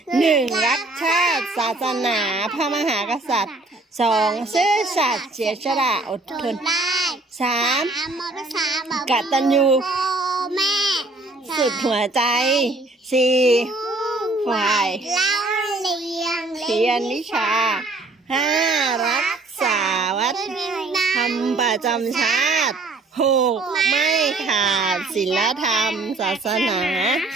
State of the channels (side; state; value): left; quieter; 3.1 dB